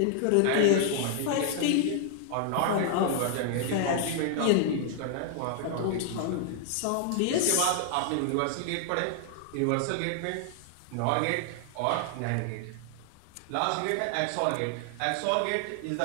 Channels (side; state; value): both; different; correlation 0.00